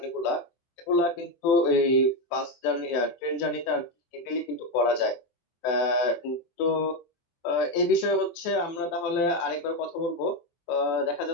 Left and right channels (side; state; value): right; late; 23 ms